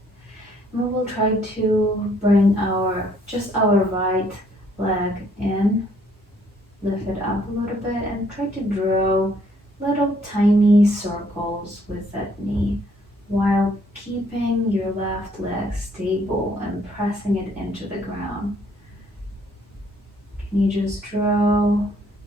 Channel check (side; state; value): both; normal; correlation 0.65